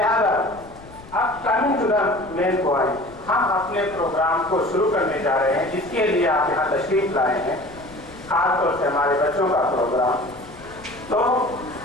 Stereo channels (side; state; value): left; noise; rumble, 20 dB below the sound